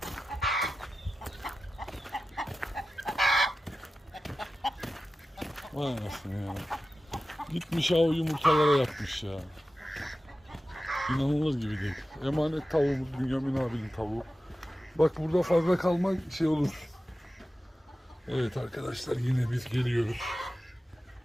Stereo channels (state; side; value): normal; both; correlation 0.94